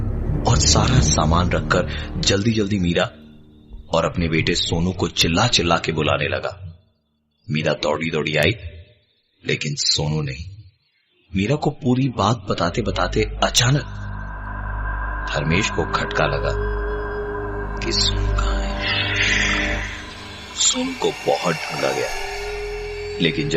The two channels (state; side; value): identical; both; correlation 1.00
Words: और सारा सामान रखकर जल्दी जल्दी मीरा और अपने बेटे सोनू को चिल्ला चिल्ला के बुलाने लगा। मीरा दौड़ी दौड़ी आई, लेकिन सोनू नहीं। मीरा को पूरी बात बताते बताते अचानक धर्मेश को खटका लगा कि सोनू कहां है। सोनू को बहुत ढूंढा गया, लेकिन